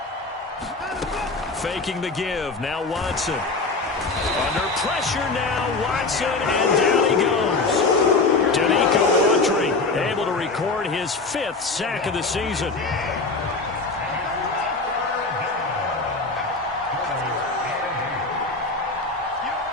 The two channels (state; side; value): quieter; right; 3.7 dB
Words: Faking the give. Now Watson. Under pressure now. Watson, and down he goes. Danico Autry able to record his 5th sack of the season.